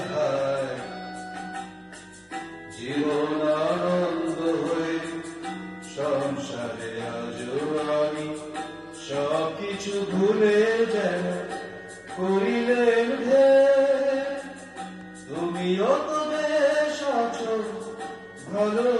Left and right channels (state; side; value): identical; both; correlation 1.00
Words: হায় জীবন আনন্দ হয়ে সংসারে আজও আমি সবকিছু ভুলে যেন করিলেন তুমিও তো বেশ আছো